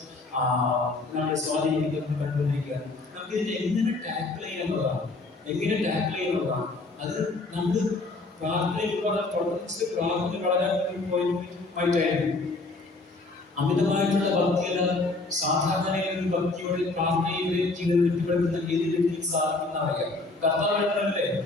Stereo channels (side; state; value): right; quieter; 3.3 dB